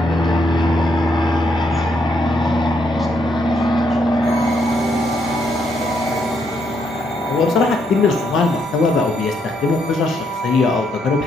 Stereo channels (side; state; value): both; normal; correlation 0.76